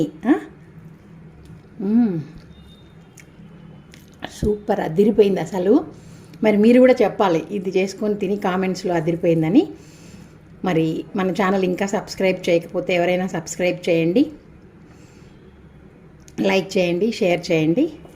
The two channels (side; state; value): both; identical; correlation 1.00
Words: సూపర్ అదిరిపోయింది అసలు. మరి మీరు కూడా చెప్పాలి ఇది చేసుకొని తిని కామెంట్స్లో అదిరిపోయిందని. మరి మన ఛానల్ ఇంకా సబ్స్క్రైబ్ చేయకపోతే ఎవరైనా సబ్స్క్రైబ్ చేయండి, లైక్ చేయండి, షేర్ చేయండి.